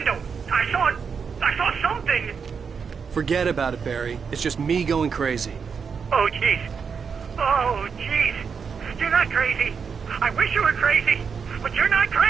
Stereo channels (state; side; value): quieter; left; 6.1 dB